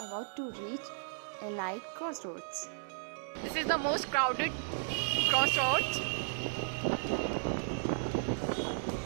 about to reach a light crossroads. This is the most crowded crossroads.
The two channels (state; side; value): silent; left; digital silence